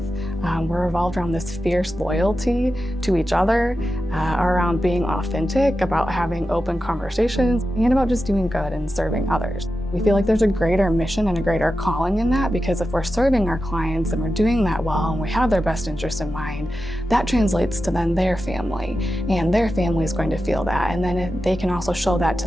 We're revolved around this fierce loyalty to each other, around being authentic, about having open conversations, and about just doing good and serving others. We feel like there's a greater mission and a greater calling in that, because if we're serving our clients and we're doing that well and we have their best interest in mind, that translates to then their family, and their family is going to feel that, and then they can also show that to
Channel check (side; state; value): both; normal; correlation 0.91